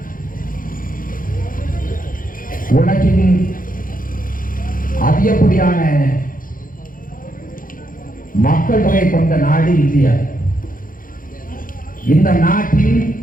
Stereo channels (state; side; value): late; right; 0.40 ms